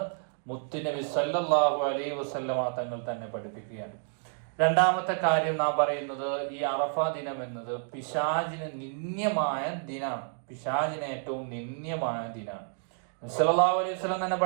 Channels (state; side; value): silent; left; 58 dB below the other